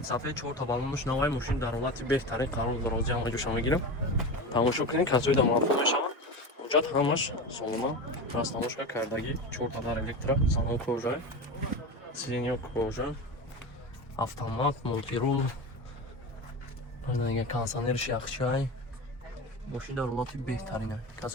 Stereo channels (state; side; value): normal; both; correlation 0.25